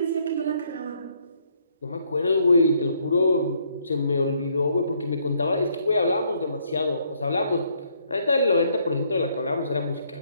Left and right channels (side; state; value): both; inverted; correlation -0.69